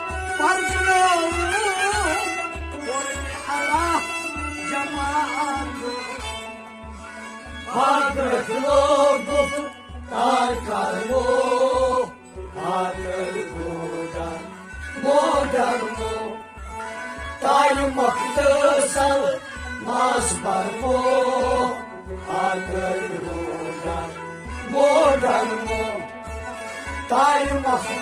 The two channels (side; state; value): both; identical; correlation 1.00